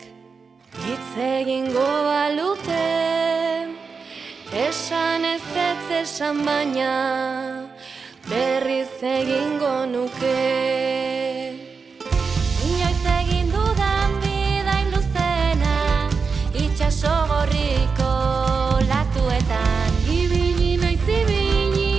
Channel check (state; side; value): quieter; left; 5.1 dB